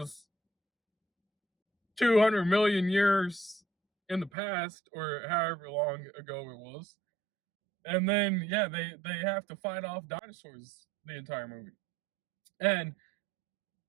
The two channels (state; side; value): drops out; left; at 4.3 s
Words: 200 million years in the past, or however long ago it was. And then, yeah, they have to fight off dinosaurs the entire movie. And